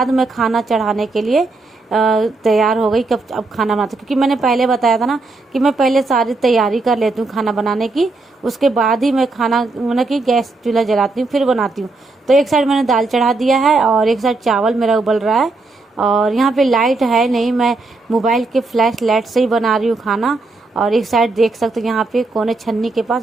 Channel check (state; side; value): quieter; left; 3.4 dB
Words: मैं खाना चढ़ाने के लिए तैयार हो गई। कब अब खाना बनाती, क्योंकि मैंने पहले बताया था ना कि मैं पहले सारी तैयारी कर लेती हूँ खाना बनाने की, उसके बाद ही मैं खाना मतलब कि गैस चूल्हा जलाती हूँ फिर बनाती हूँ। तो एक साइड मैंने दाल चढ़ा दिया है और एक साइड चावल मेरा उबल रहा है। और यहाँ पे लाइट है नहीं, मैं मोबाइल के फ्लैश लाइट से ही बना रही हूँ खाना। और एक साइड देख सकते हो यहाँ पे कोने छन्नी के